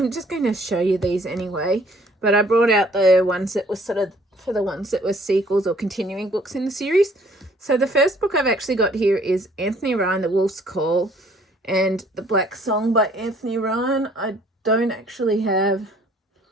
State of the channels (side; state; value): both; normal; correlation 0.59